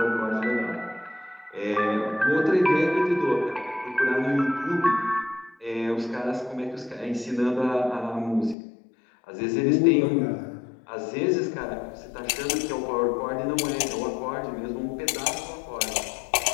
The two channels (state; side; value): drops out; right; at 8.6 s